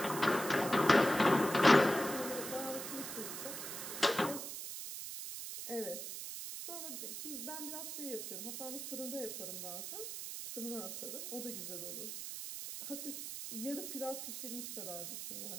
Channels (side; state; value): right; noise; hiss, 6 dB below the sound